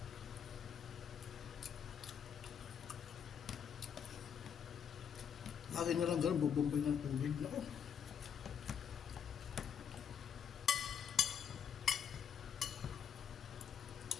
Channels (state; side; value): quieter; right; 7.7 dB